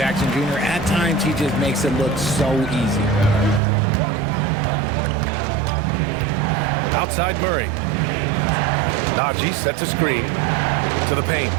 Jr., at times, he just makes it look so easy. Outside Murray. Najee sets a screen to the paint.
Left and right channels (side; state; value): left; drops out; at 3.6 s